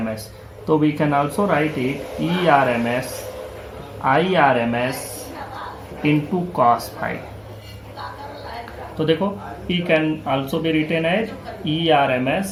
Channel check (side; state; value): both; identical; correlation 1.00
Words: तो we can also write it IRMS into cos phi. तो देखो, P can also be written as